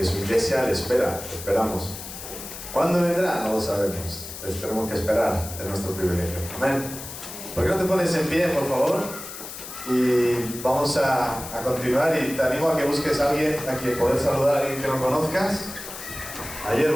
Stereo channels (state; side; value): noise; left; hiss, 11 dB below the sound